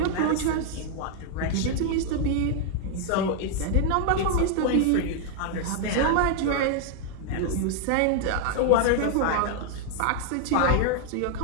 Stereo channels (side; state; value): both; different; correlation 0.00